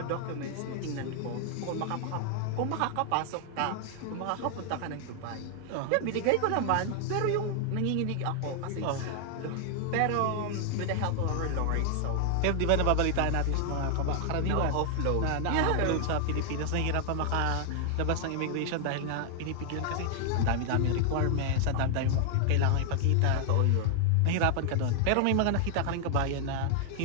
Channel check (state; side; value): different; both; correlation 0.00